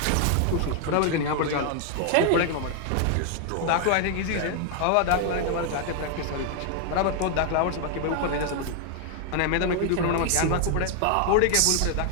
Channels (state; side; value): different; both; correlation 0.00